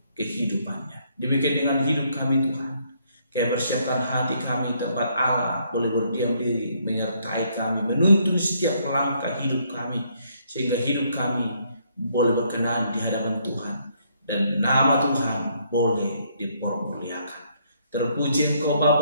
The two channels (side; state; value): both; inverted; correlation -0.70